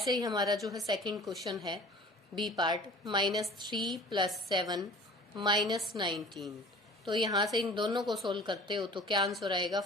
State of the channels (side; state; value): both; normal; correlation 0.45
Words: ही हमारा जो है सेकंड क्वेश्चन है बी पार्ट, -3 प्लस 7 -19। तो यहाँ से इन दोनों को सोल्व करते हो तो क्या आंसर आएगा,